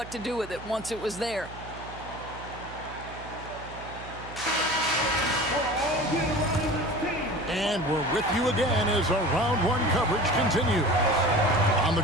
to do with it once it was there. And we're with you again as our round 1 coverage continues. On the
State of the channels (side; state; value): right; noise; hum, 14 dB below the sound